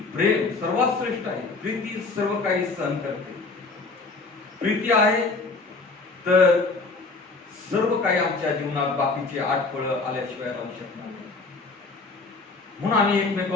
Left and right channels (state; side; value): quieter; right; 3.8 dB